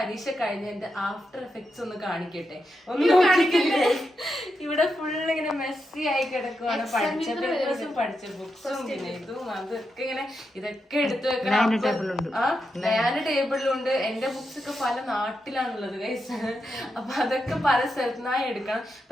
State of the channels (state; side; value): normal; both; correlation 0.86